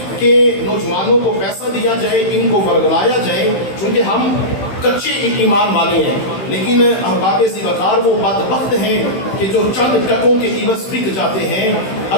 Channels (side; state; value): right; late; 15 ms